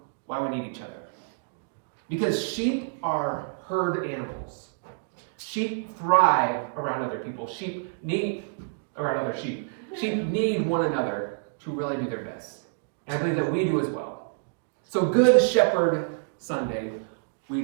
why we need each other. Because sheep are herd animals. Sheep thrive around other people. Sheep need around other sheep. Sheep need one another to really do their best. And I believe that we do as well. So Good Shepherd Sunday. We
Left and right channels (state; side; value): silent; left; digital silence